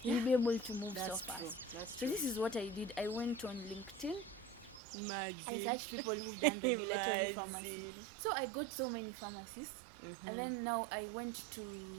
you'll be able to move so fast. So this is what I did. I went on LinkedIn. I searched people who've done regulatory pharmacy. So I got so many pharmacists. And then now I went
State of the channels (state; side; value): drops out; left; at 4.8 s